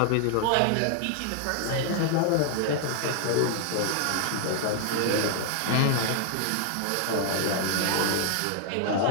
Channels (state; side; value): different; both; correlation 0.00